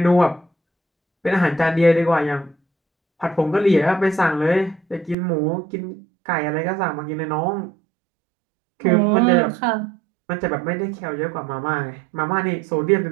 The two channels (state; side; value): drops out; left; at 5.2 s